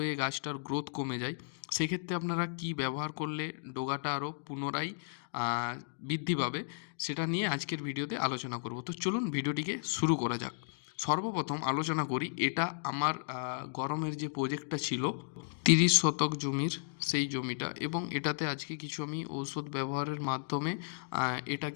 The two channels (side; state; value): right; silent; digital silence